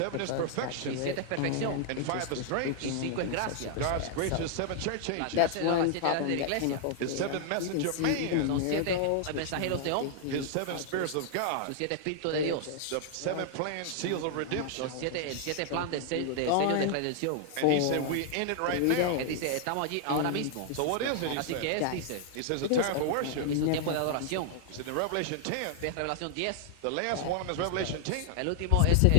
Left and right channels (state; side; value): different; both; correlation -0.01